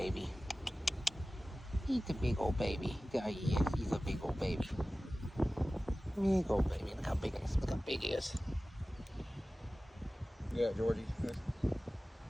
He's a big old baby. There he is. He's a big old baby. Big old baby. Look how big he is. Look how big he is. Yeah, Georgie.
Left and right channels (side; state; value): both; normal; correlation 0.96